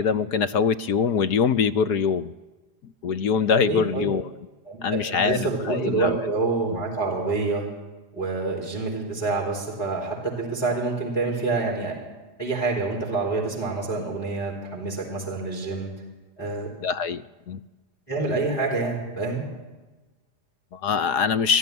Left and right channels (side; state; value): right; late; 4.9 ms